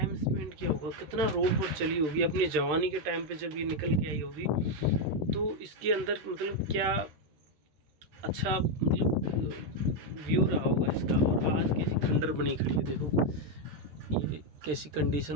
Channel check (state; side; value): late; left; 13 ms